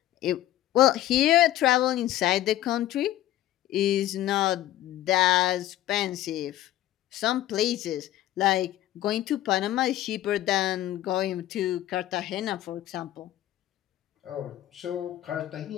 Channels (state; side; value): quieter; right; 13.9 dB